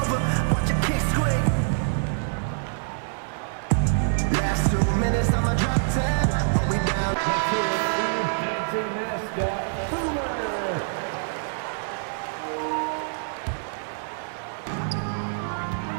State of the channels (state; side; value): silent; left; digital silence